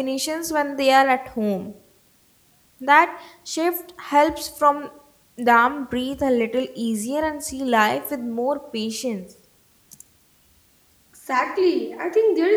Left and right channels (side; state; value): both; identical; correlation 1.00